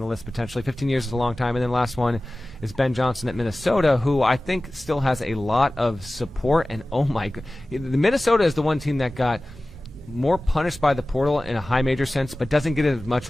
list potentially. 15 years is a long time. And then last one is Ben Johnson at Minnesota, who I think still has a lot of support. And oh my god, the Minnesota is the one team that got more punished by the portal in a high major sense, but doesn't get as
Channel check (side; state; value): both; normal; correlation 0.97